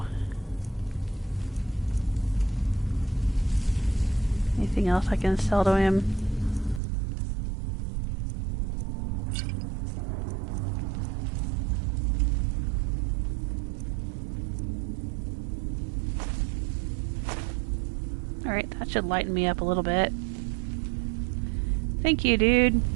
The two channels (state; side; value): drops out; left; at 6.8 s